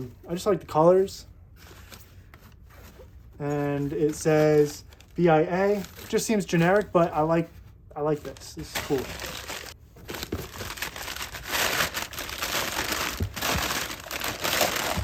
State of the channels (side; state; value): both; identical; correlation 1.00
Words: just like the colors. And it says BIA. Just seems generic, but I like this. This is cool.